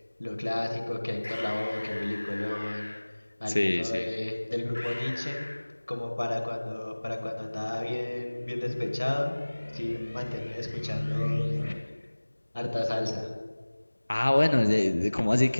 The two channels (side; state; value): both; inverted; correlation -1.00